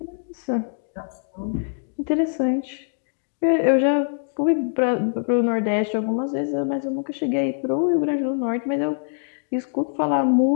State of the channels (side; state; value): right; silent; digital silence